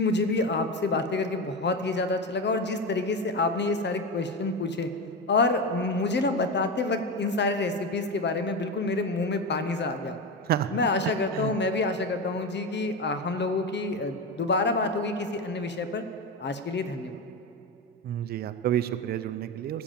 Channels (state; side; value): normal; both; correlation 0.19